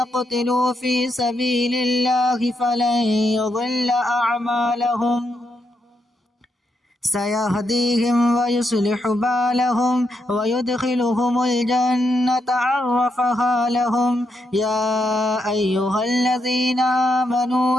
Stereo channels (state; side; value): normal; both; correlation 0.81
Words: في سبيل الله فلن يضل أعمالهم سيهديهم ويصلح بالهم ويدخلهم الجنة عرفها لهم. يا أيها الذين